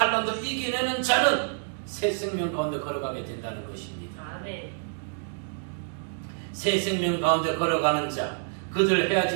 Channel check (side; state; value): left; silent; digital silence